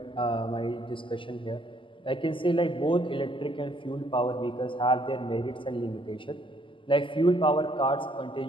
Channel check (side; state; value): right; late; 0.25 ms